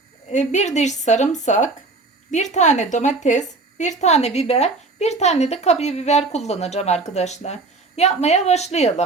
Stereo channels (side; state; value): left; quieter; 3.7 dB